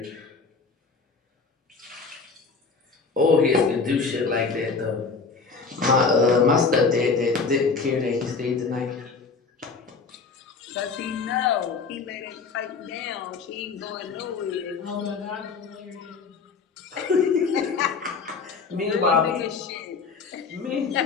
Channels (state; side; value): quieter; right; 4.8 dB